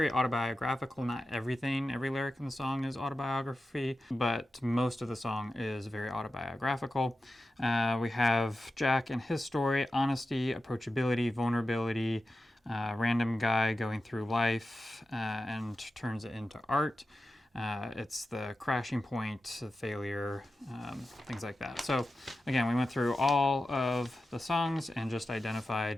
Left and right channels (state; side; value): normal; both; correlation 0.93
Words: autobiographical. Not everything, every lyric in the song is autobiography, but most of the song is very autobiographical. We have Jack and his story, honesty, approachability, vulnerability, random guy going through life and turns it into art. It's the crashing point, the failure, things like that. So again, we went through all of the songs and just